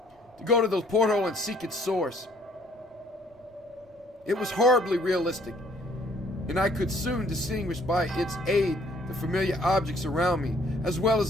to go to the porthole and seek its source. It was horribly realistic, and I could soon distinguish by its aid the familiar objects around me, as well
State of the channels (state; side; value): normal; both; correlation 0.61